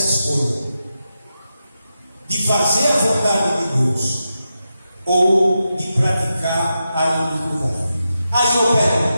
escolha de fazer a vontade de Deus ou de praticar a iniquidade. Aí eu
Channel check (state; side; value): inverted; both; correlation -0.88